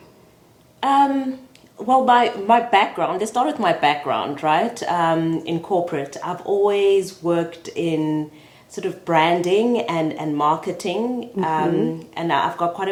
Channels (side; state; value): both; identical; correlation 1.00